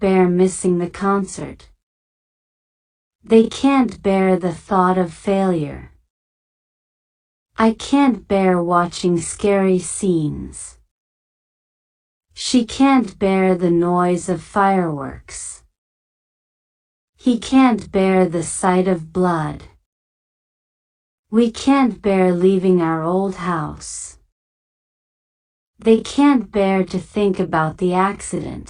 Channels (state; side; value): identical; both; correlation 1.00